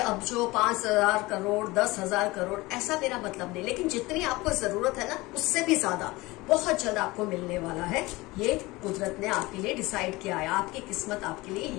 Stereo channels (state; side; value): quieter; right; 21.3 dB